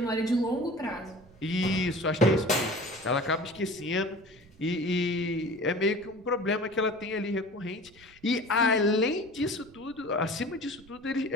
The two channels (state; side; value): noise; right; rumble, 25 dB below the sound